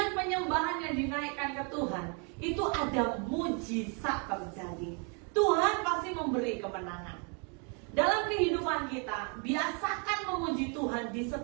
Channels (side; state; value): left; quieter; 36.8 dB